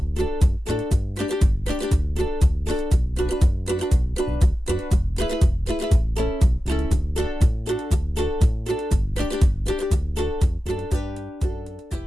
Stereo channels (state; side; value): normal; both; correlation 0.93